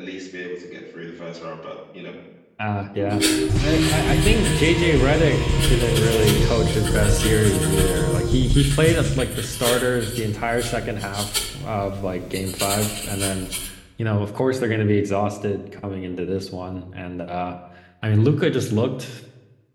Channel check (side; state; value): both; identical; correlation 1.00